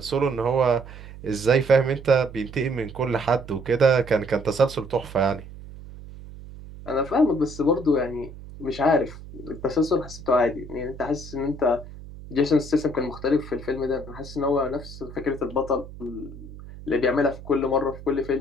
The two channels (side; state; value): right; noise; hum, 15 dB below the sound